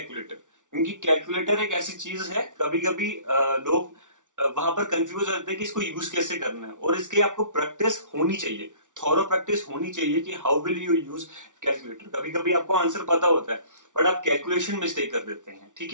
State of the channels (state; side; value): late; left; 0.87 ms